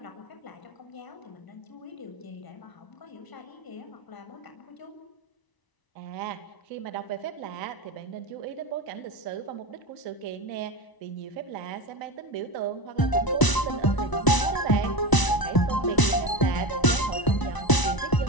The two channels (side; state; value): right; late; 1.0 ms